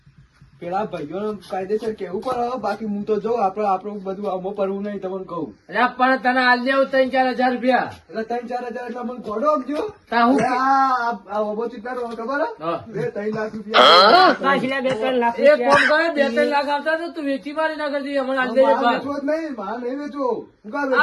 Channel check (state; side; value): identical; both; correlation 1.00